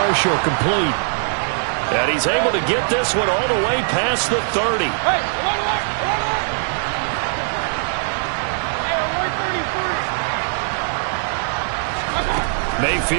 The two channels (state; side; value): silent; left; digital silence